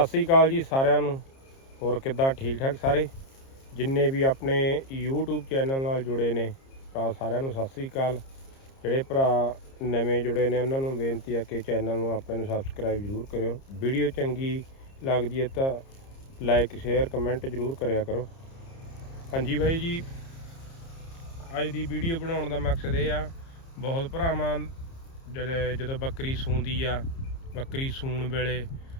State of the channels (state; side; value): late; right; 30 ms